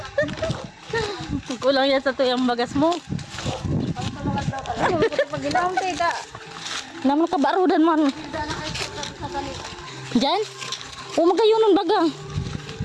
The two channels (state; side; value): identical; both; correlation 1.00